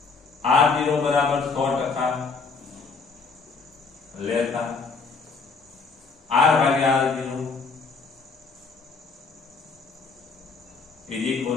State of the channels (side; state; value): right; quieter; 4.6 dB